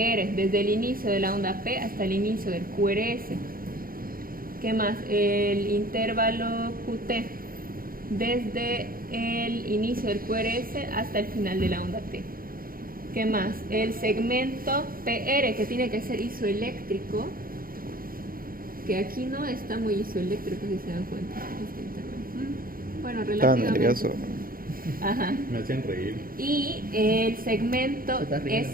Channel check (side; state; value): left; late; 0.42 ms